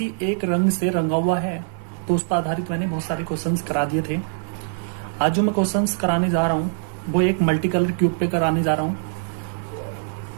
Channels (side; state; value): left; silent; 59 dB below the other